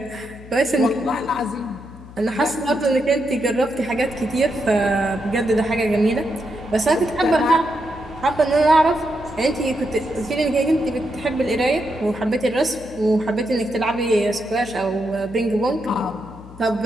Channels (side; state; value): left; noise; hum, 18 dB below the sound